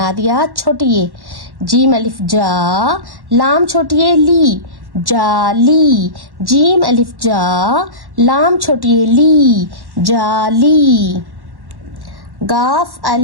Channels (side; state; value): left; late; 1.1 ms